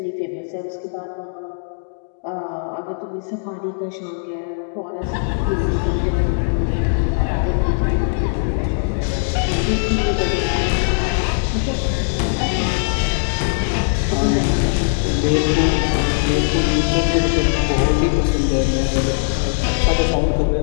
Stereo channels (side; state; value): right; silent; digital silence